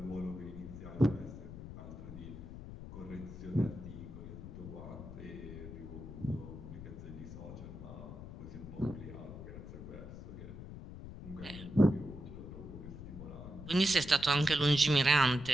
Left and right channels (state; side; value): noise; left; rumble, 11 dB below the sound